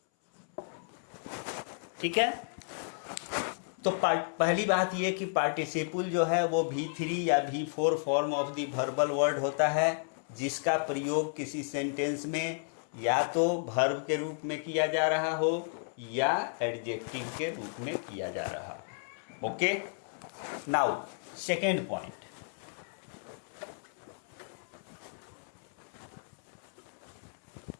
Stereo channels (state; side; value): silent; right; 56 dB below the other